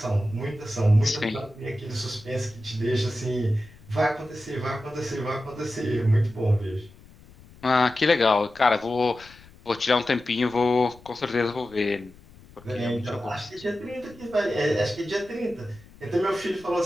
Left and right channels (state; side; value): noise; left; rumble, 23 dB below the sound